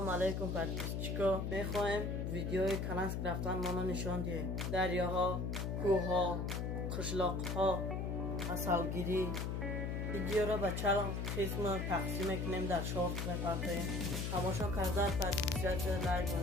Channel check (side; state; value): left; noise; hum, 1 dB below the sound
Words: علیکم پرتیسچیکا. میخوایم ویدیوی کنسک رفتن ما نشان دهیم. دریاها، کوها، قشلاقها، اصلگیری. ویدیو را به چند قسم تقسیم کنیم در شورت میپرتیم. تماشا کرده پرتیسچیکا لایک